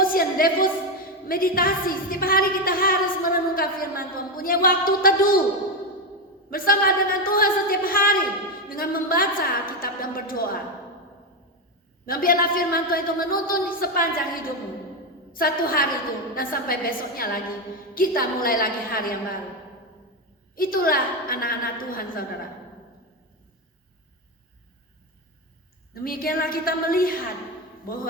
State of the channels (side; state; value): both; normal; correlation 0.11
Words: meditasi. Setiap hari kita harus merenungkan firman Tuhan, punya waktu teduh bersama dengan Tuhan setiap hari dengan membaca Alkitab dan berdoa. Dan biarlah firman Tuhan itu menuntun sepanjang hidupmu, satu hari itu, dan sampai besoknya lagi kita mulai lagi hari yang baru. Itulah anak-anak Tuhan, saudara. Demikianlah kita melihat